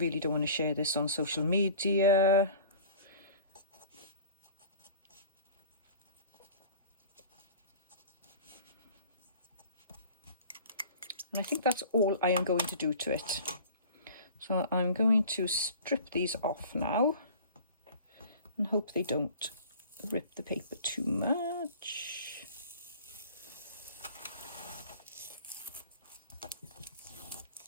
don't want to share this on social media. And I think that's all I am going to do to it. So I'm going to strip these off now and hope they don't rip the paper too much.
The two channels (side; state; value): both; inverted; correlation -0.43